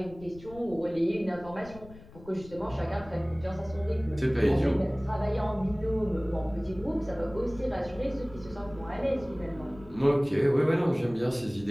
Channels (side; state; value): left; noise; rumble, 19 dB below the sound